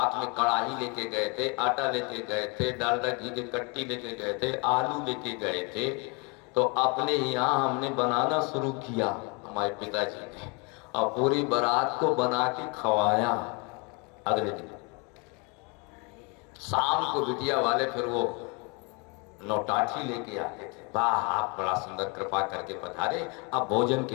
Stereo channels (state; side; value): quieter; right; 31.5 dB